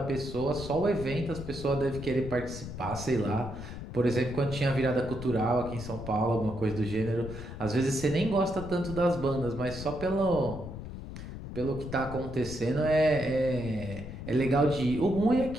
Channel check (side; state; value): left; noise; rumble, 10 dB below the sound